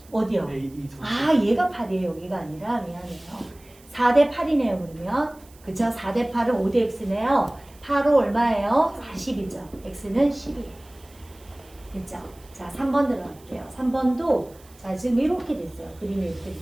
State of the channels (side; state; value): right; noise; hiss, 26 dB below the sound